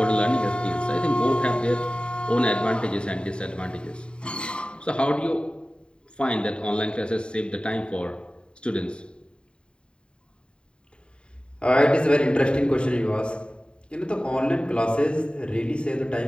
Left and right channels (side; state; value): right; late; 0.052 ms